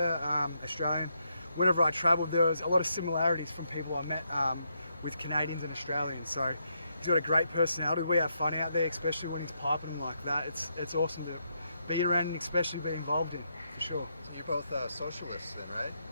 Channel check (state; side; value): inverted; both; correlation -0.79